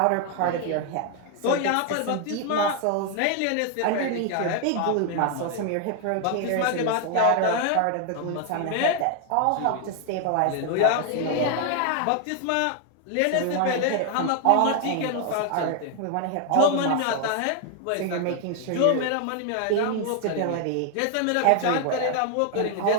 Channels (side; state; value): both; different; correlation 0.00